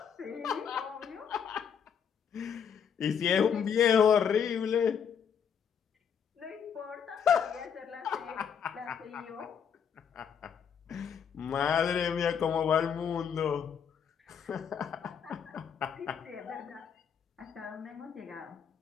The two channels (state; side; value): quieter; right; 7.5 dB